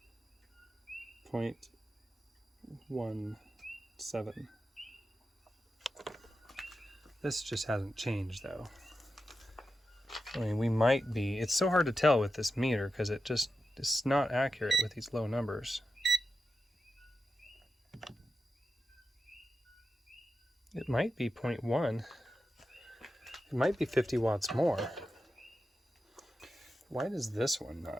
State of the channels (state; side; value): normal; both; correlation 0.91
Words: 0.17. This just hasn't changed though. I mean, we might be, it's so hard to tell with this meter because it's not accurate with these low numbers. It might be 0.1. It might be 50 watts more. Why does this one